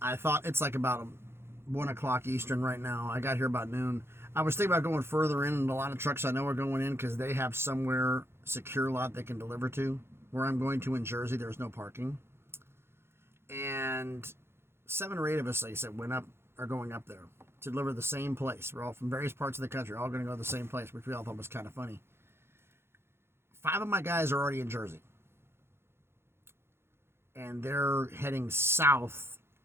thought it's like about 1 o'clock Eastern right now. I got here about noon. I was thinking about going further in, and a lot of trucks I know are going in because they have somewhere secure lot they can deliver to. Where I'm going to in Jersey, there's no parking. And 7 or 8 of us, like I said, are going up there to deliver the same place. We're all from various parts of the country, all going to go to the same place, which we all thought was kind of funny. 5 of my guys are already in Jersey. And they're heading south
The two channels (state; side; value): late; left; 0.12 ms